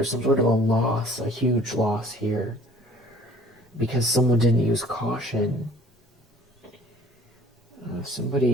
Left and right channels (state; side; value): normal; both; correlation 0.52